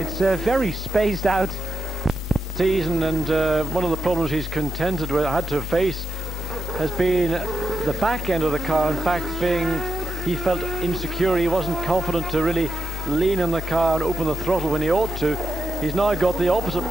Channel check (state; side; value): normal; both; correlation 0.85